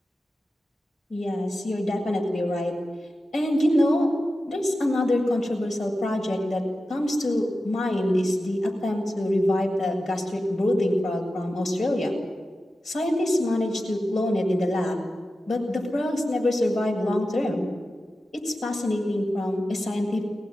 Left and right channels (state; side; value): normal; both; correlation 0.93